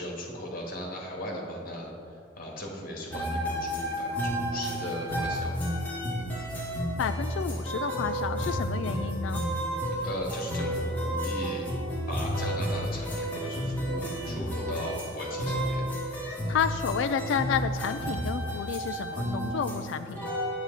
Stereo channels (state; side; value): normal; both; correlation 0.36